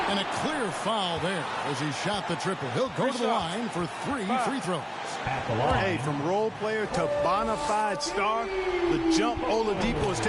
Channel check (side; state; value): both; identical; correlation 1.00